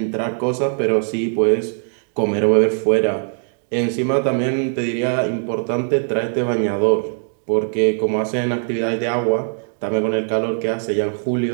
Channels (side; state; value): left; silent; 64 dB below the other